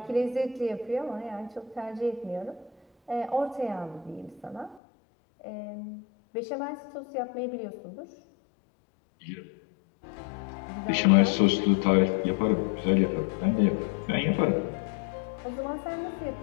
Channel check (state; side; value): drops out; right; at 4.8 s